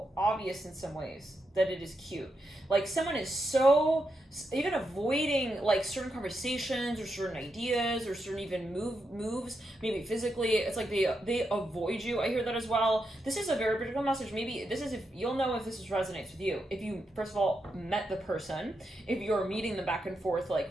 obvious in some ways that it is cute. Like, someone is so even avoiding like certain conversations or certain ideas or certain even moves, maybe physically. It's like they avoid you. I hear that as well. This is a very particular message. Maybe this is, if you'll know if this resonates with you. If you first of all met the person, if you're meeting them back and forth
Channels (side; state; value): both; normal; correlation 0.84